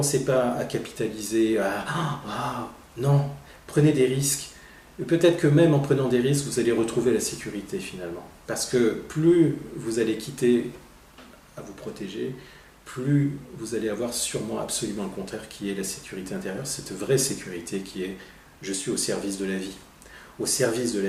pas à capitaliser, non, prenez des risques. Et peut-être que même en prenant des risques, vous allez retrouver la sécurité finalement. Parce que plus vous allez quitter à vous protéger, plus vous allez avoir sûrement absolument le contraire qui est la sécurité intérieure, cette vraie sécurité qui est « je suis au service de la vie ». Au service de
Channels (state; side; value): identical; both; correlation 1.00